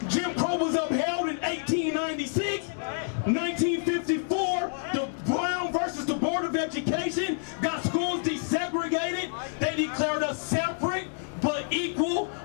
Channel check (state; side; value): silent; right; digital silence